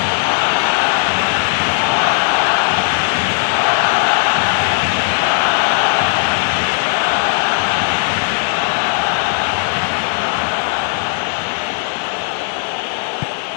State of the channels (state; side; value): silent; right; digital silence